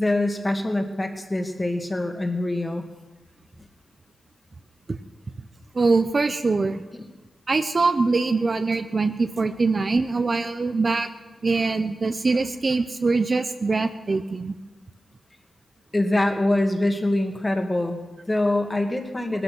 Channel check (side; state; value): both; normal; correlation 0.94